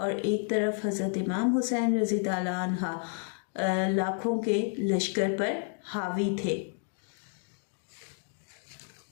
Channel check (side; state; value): right; silent; 57 dB below the other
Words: एक तरफ हज़रत इमाम हुसैन रज़ी ताला अन्हा लाखों के लश्कर पर हावी थे